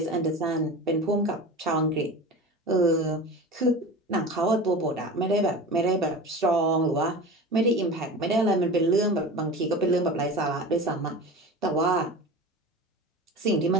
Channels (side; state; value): both; normal; correlation 0.32